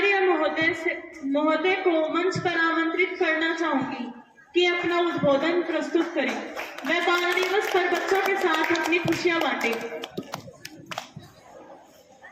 महोदय को मंच पर आमंत्रित करना चाहूंगी कि अपना उद्बोधन प्रस्तुत करें। वह बाल दिवस पर बच्चों के साथ अपनी खुशियां बांटे।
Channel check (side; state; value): both; identical; correlation 1.00